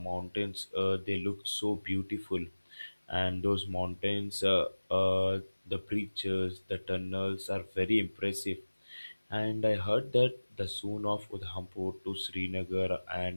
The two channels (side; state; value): both; inverted; correlation -1.00